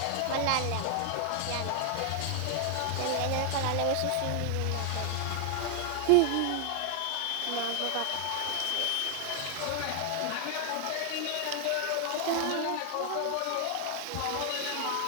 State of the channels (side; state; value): both; different; correlation 0.00